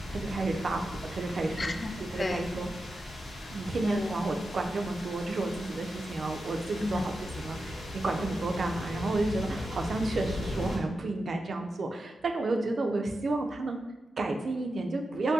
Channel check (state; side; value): normal; both; correlation 0.90